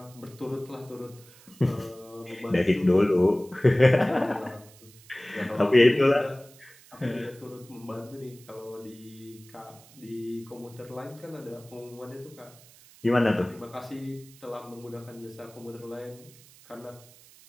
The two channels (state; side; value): noise; right; hiss, 24 dB below the sound